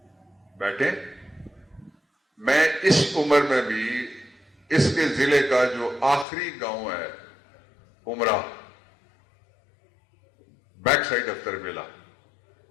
بیٹھے, میں اس عمر میں بھی اس کے ضلع کا جو آخری گاؤں ہے عمرہ, بیک سائڈ آف تربیلا,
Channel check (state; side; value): drops out; right; at 6.2 s